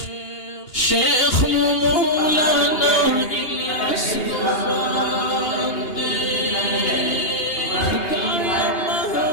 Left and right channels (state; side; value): late; right; 2.8 ms